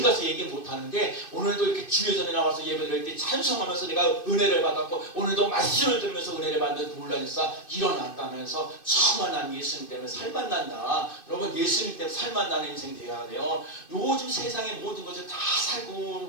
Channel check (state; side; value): late; right; 2.6 ms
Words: 가서 얘기 못하는데 오늘도 이렇게 주회전에 나와서 예배드릴 때 찬송하면서 내가 은혜를 받았고 오늘도 말씀을 들으면서 은혜를 받는 놀라운 역사 일어났다면서 정말 난 예수님 때문에 살만 난다. 여러분 예수님 때문에 살만 나는 인생 되어야 돼요. 요즘 세상의 모든 것을 다